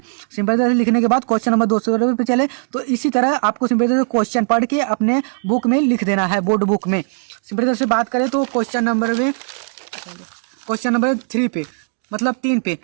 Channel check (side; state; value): left; silent; 56 dB below the other